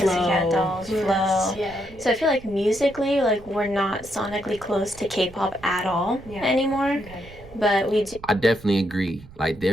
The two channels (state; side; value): noise; right; rumble, 20 dB below the sound